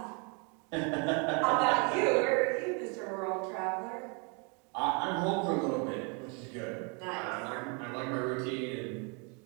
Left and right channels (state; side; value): quieter; left; 34.4 dB